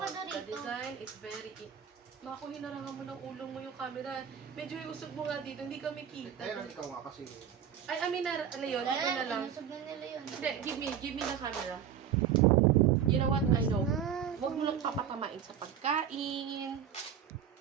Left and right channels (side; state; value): left; quieter; 8.6 dB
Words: The Dorito. design is very Mako, hinarangan mo ng ulong mo yung camera. Medyo iusog mo nga dito, hindi kami kita. Ayun, ikaw nga kasi. Ay, amin na, ano yun, dito na lang. Inusog na nila yun. Hindi, give me the camera. You know what, I know. Huwag mo nang papatamain sa pagkain.